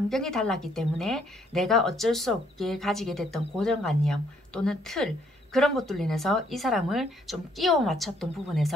달랐기 때문에 내가 어쩔 수 없게 가지게 됐던 고정관념 또는 틀 그런 것들로 인해서 이 사람을 좀 끼워 맞췄던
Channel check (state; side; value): normal; both; correlation 0.68